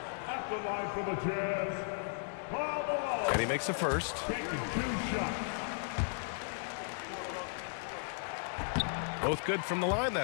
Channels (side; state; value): right; silent; 54 dB below the other